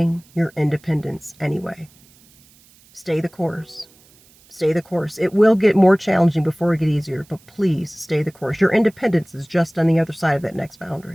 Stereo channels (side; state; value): right; noise; hiss, 29 dB below the sound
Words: your independence anyway. Stay the course. Stay the course. It will get more challenging before it gets easier, but please stay the course. Your independence is just on the other side of that next